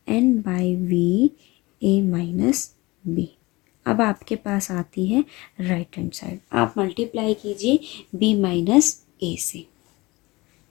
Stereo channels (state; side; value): quieter; right; 22.3 dB